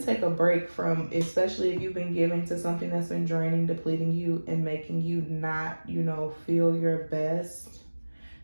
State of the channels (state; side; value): inverted; both; correlation -1.00